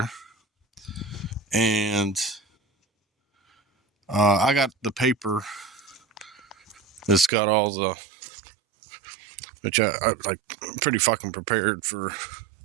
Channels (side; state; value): left; drops out; at 7.3 s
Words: and I got the paper that's got all the, which I like, I'm pretty fucking prepared for